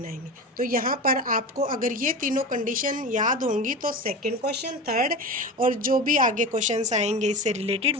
आएंगी। तो यहाँ पर आपको अगर ये तीनों कंडीशन याद होंगी तो सेकंड क्वेश्चन, थर्ड और जो भी आगे क्वेश्चंस आएंगे इससे रिलेटेड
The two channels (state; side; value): normal; both; correlation 0.28